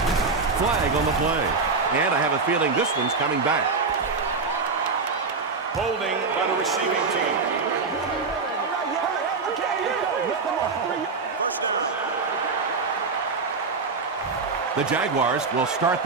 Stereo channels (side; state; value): left; quieter; 4.5 dB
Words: Flag on the play. And I have a feeling this one's coming back. Holding by the receiving team. The Jaguars will start